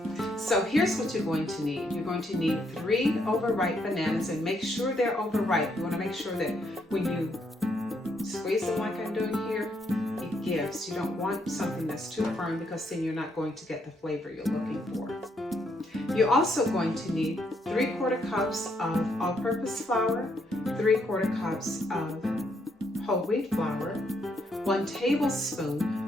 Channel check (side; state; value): both; normal; correlation 0.74